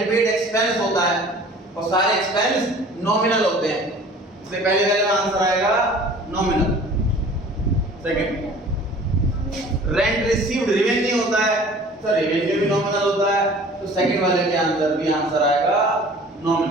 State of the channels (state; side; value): normal; both; correlation 0.47